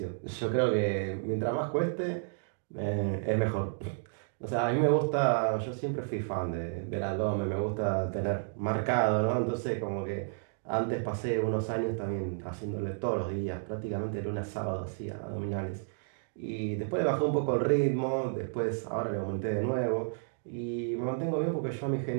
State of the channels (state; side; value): silent; left; digital silence